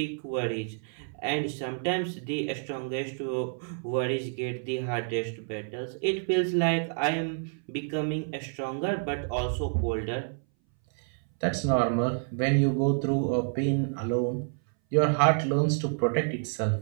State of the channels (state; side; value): silent; left; 59 dB below the other